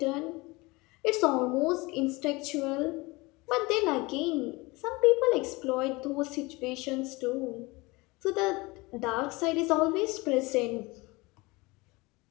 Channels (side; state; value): right; quieter; 23.8 dB